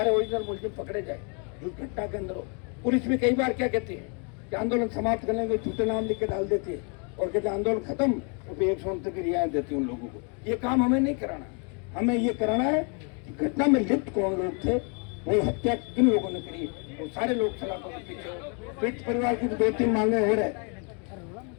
ओरिजिनल मुलजिम पकड़े जाए जो घटना के अंदर हो। पुलिस भी कई बार क्या कहती है कि आंदोलन समाप्त करने के झूठे नाम लिख के डाल देती है और कहते हैं आंदोलन खत्म, तो फिर 169 की रियायत देती है उन लोगों को। ये काम हमें नहीं कराना, हमें ये कराना है कि घटना में लिप्त कौन लोग थे, वो हत्या किन लोगों ने करी, वो सारे लोग सलाखों के पीछे हो। पीड़ित परिवार की 2-3 मांगे हो रहे,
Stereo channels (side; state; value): right; quieter; 37.7 dB